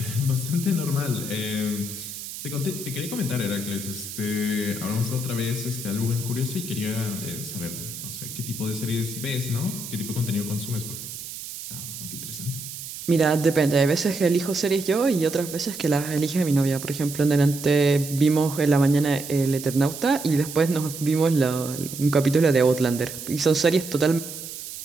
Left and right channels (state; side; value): noise; right; hiss, 10 dB below the sound